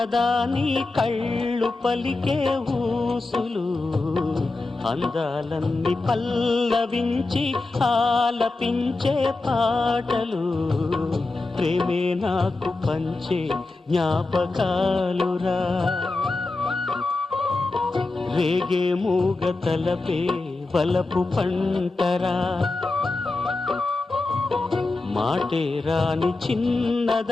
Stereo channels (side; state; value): right; quieter; 3.3 dB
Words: కళ్ళు పలికే ఊసులు, అందాలన్నీ పల్లవించి ఆలపించే పాటలు, ప్రేమే నాకు పంచే జ్ఞాపకాలురా. రేగే మూగ తలపే వలపు పంటరా, మాటే రాని